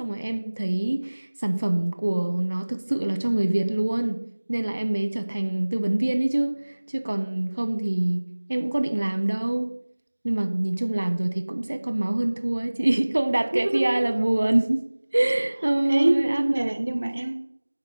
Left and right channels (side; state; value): both; inverted; correlation -1.00